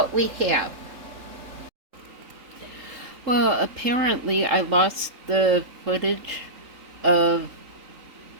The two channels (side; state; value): left; late; 3.8 ms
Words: we have. Well, apparently I lost the footage of